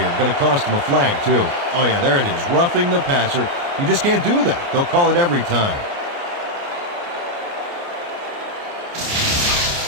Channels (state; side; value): late; left; 29 ms